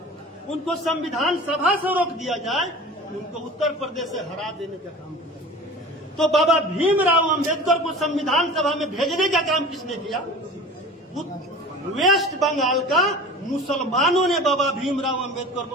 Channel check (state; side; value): normal; both; correlation 0.38